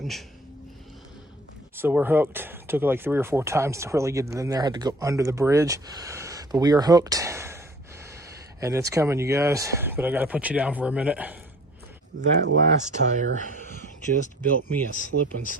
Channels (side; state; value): both; normal; correlation 0.50